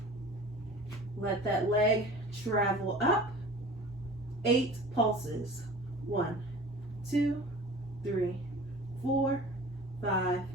Let that leg travel up. 8 pulses. 1, 2, 3, 4, 5,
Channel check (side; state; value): both; normal; correlation 0.41